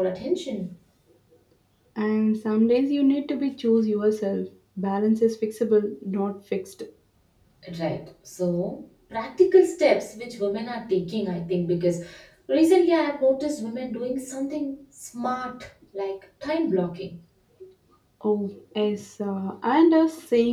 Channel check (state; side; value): identical; both; correlation 1.00